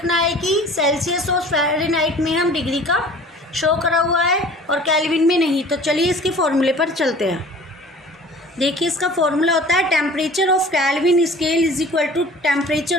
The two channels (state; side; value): normal; both; correlation 0.46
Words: है कि सेल्सियस और फ़ारेनहाइट में हम डिग्री का शो करा हुआ है और केल्विन में नहीं। तो चलिए इसके फॉर्मूले पर चलते हैं। देखिए इसका फॉर्मूला होता है temperature of Kelvin scale is equal to